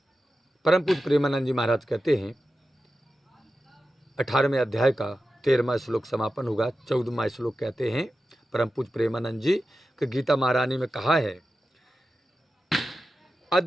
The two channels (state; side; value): normal; both; correlation 0.92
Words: परम पूज्य प्रेमानंद जी महाराज कहते हैं 18वें अध्याय का 13वां श्लोक समापन होगा। 14वां श्लोक कहते हैं परम पूज्य प्रेमानंद जी कि गीता महारानी में कहा है